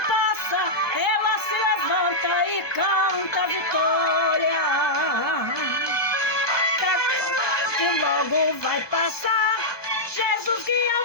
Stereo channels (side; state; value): right; late; 1.2 ms